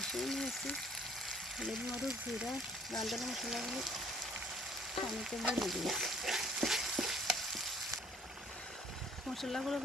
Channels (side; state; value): both; normal; correlation 0.57